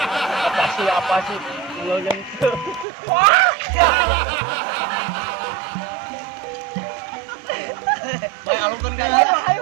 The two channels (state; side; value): drops out; left; at 2.9 s